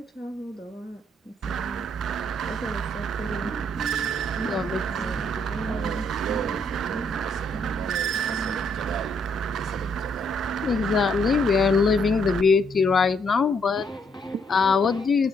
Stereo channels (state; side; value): normal; both; correlation 0.71